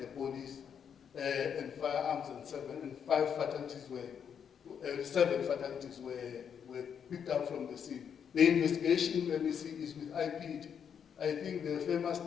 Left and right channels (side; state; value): right; quieter; 7.7 dB